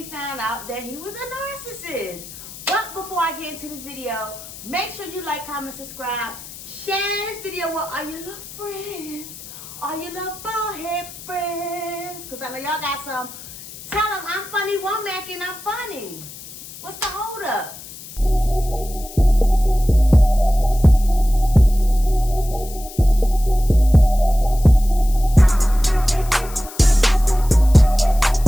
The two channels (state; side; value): noise; left; hiss, 15 dB below the sound